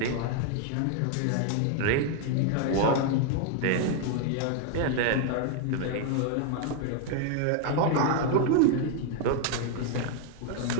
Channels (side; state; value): both; different; correlation 0.00